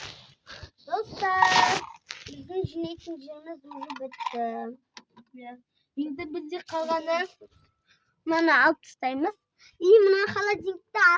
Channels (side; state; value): both; identical; correlation 1.00